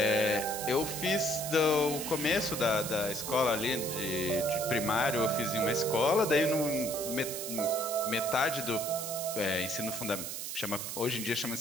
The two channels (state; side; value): noise; right; hiss, 6 dB below the sound